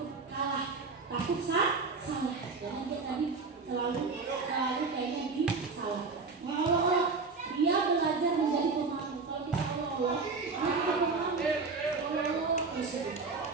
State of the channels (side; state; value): left; quieter; 4.4 dB